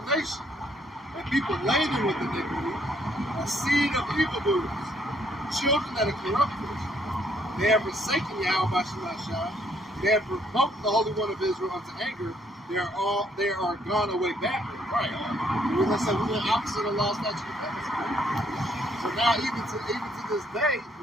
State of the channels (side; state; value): both; normal; correlation 0.68